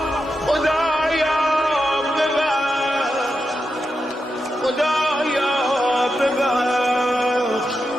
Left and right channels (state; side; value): normal; both; correlation 0.88